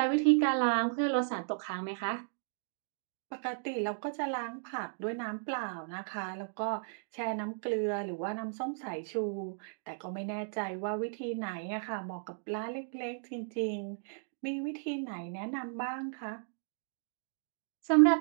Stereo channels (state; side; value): silent; left; digital silence